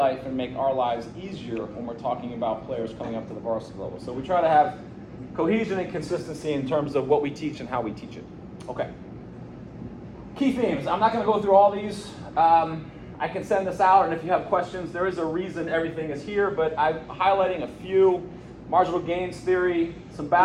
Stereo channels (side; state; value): both; identical; correlation 1.00